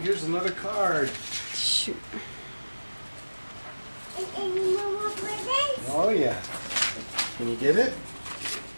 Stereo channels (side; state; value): both; inverted; correlation -1.00